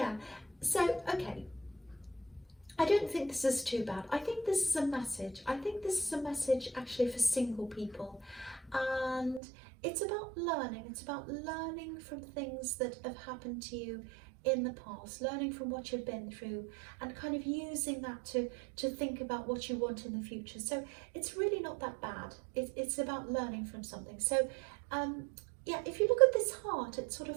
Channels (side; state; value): left; drops out; at 9.4 s